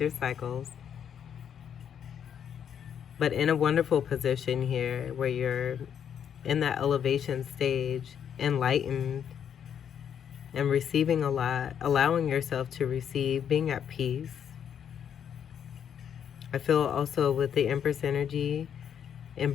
cycles. But in a wonderful position here where you're in that elevation stage, enlightened and receiving a lot, allowing yourself to receive, being at peace. I feel also with the Empress energy,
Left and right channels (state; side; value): quieter; right; 8.5 dB